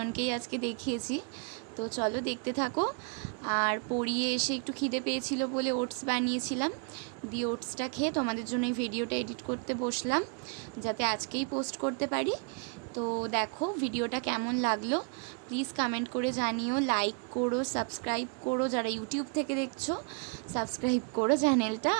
আজকে দেখিয়েছি। তো চলো দেখতে থাকো। আর পড়িয়ে এসে একটু খিদে পেয়েছিল বলে ওটস বানিয়েছিলাম, দিয়ে ওটসটা খেয়ে তোমাদের জন্য এই ভিডিওটা এডিট করতে বসলাম, যাতে আজকেই পোস্ট করতে পারি। তো দেখো ভিডিওটা কেমন লাগলো প্লিজ কমেন্ট করে জানিও, লাইক করো, সাবস্ক্রাইব করো। যারা ইউটিউব থেকে দেখছো সাবস্ক্রাইব করো চ্যানেলটা,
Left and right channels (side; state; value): left; quieter; 38.3 dB